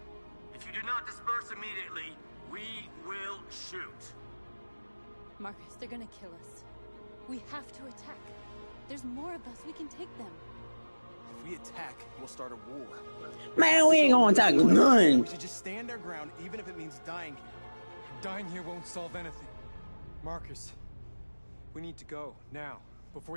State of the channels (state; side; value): inverted; both; correlation -1.00